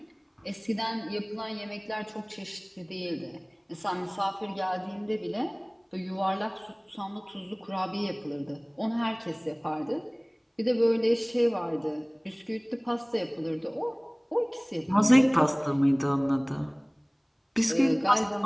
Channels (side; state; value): both; identical; correlation 1.00